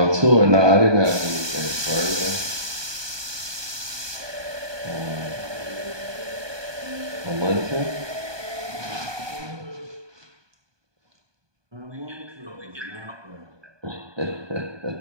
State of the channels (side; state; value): left; late; 1.2 ms